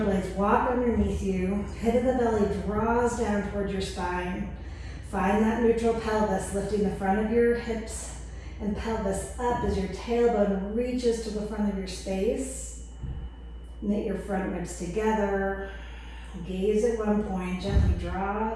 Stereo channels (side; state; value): both; identical; correlation 1.00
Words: blades walk underneath you. Pit of the belly draws down towards your spine. Find that neutral pelvis, lifting the front of your hips and pelvis up as your tailbone reaches to the front of your space. Knit your front ribs together. Gaze at one point. Gently draw